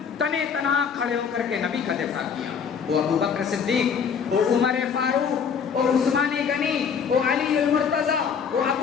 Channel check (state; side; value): quieter; right; 6.7 dB